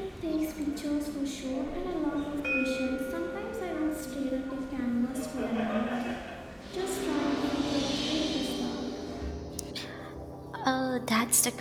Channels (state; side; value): identical; both; correlation 1.00